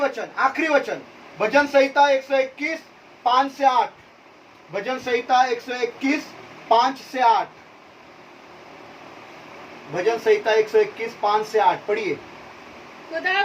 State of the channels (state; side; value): identical; both; correlation 1.00